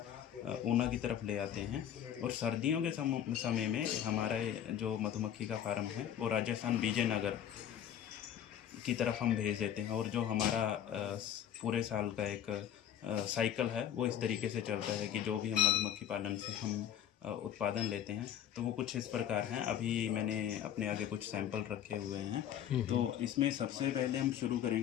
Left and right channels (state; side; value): quieter; right; 10.1 dB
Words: ऊना की तरफ ले आते हैं। और सर्दियों के समय में हमारा जो मधुमक्खी का फार्म है वो राजस्थान विजयनगर की तरफ हम भेज देते हैं। और जो हमारा पूरे साल का एक साइकिल है वो इस तरीके से चलता है कि जो भी हम मधुमक्खी पालन से हम उत्पादन लेते हैं तो वो कुछ इस प्रकार हैं। अभी मैंने अपने आगे कुछ सैंपल रखे हुए हैं। तो इसमें सबसे पहले हम शुरू